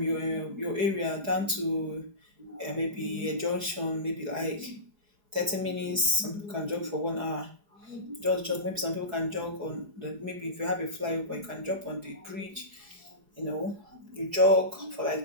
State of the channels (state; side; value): late; left; 4.7 ms